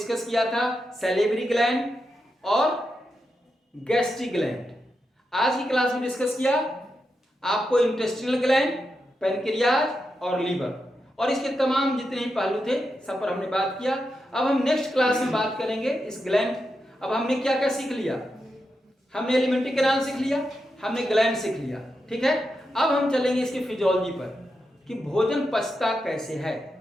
किया था सैलिवरी ग्लैंड और गैस्ट्रिक ग्लैंड। आज की क्लास में डिस्कस किया आपको इंटेस्टिनल ग्लैंड, पैनक्रियाज और लीवर, और इसके तमाम जितने ही पहलू थे सब पर हमने बात किया। अब हम नेक्स्ट क्लास में बात करेंगे इस ग्लैंड। अब हमने क्या क्या सीख लिया? हमने एलिमेंट्री कैनाल सीख लिया, हमने ग्लैंड सीख लिया। ठीक है, अब हम चलेंगे इसकी फिजियोलॉजी पर कि भोजन पचता कैसे है,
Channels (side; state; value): both; normal; correlation 0.87